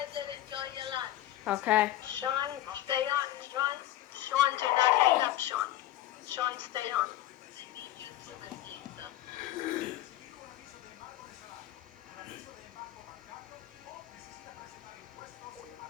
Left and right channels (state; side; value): quieter; right; 13.9 dB